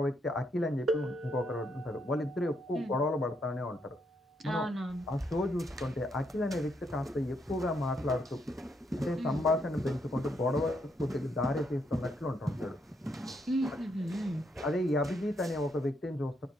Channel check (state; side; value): normal; both; correlation 0.76